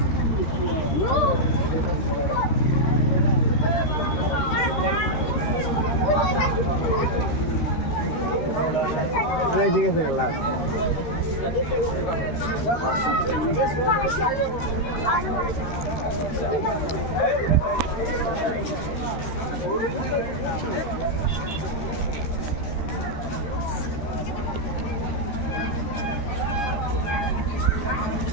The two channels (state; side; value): late; right; 13 ms